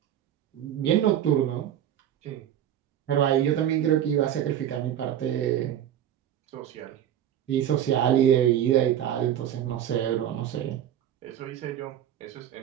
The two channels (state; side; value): quieter; left; 10.6 dB